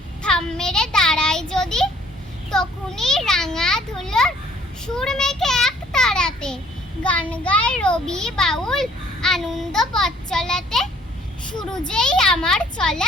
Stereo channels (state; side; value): normal; both; correlation 0.59